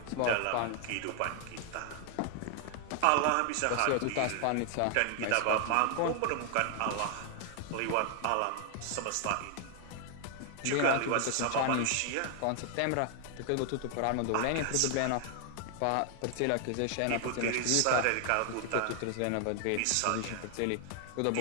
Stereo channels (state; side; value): different; both; correlation 0.00